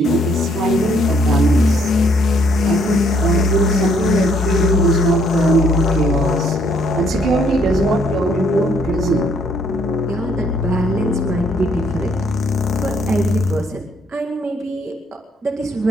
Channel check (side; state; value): both; normal; correlation 0.67